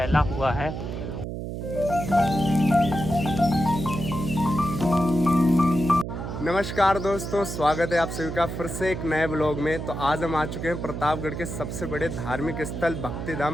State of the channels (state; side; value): noise; right; hum, 6 dB below the sound